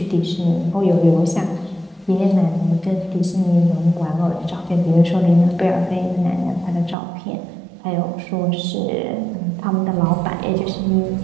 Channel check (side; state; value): left; drops out; at 7.0 s